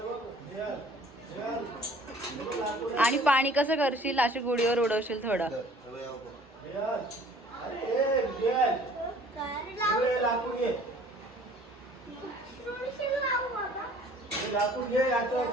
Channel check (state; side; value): normal; both; correlation 0.52